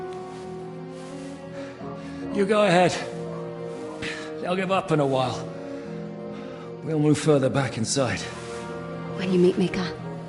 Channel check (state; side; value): identical; both; correlation 1.00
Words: You go ahead. They'll give up in a while. We'll move further back inside. When you meet Mika,